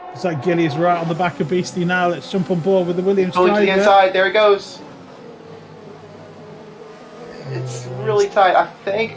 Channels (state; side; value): identical; both; correlation 1.00